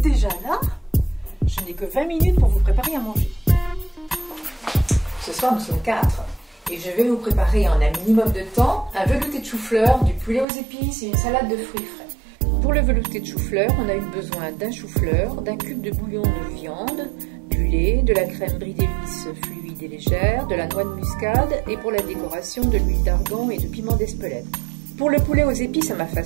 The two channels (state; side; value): drops out; left; at 10.5 s